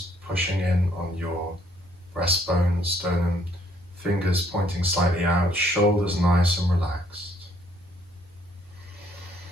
pushing in on your breastbone, sternum, fingers pointing slightly out, shoulders nice and relaxed.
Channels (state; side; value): normal; both; correlation 0.66